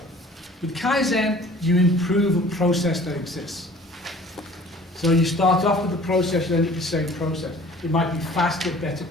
With Kaizen, you improve a process that exists. So you start off with the process, you end up with the same process. It might be faster, better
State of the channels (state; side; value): normal; both; correlation 0.49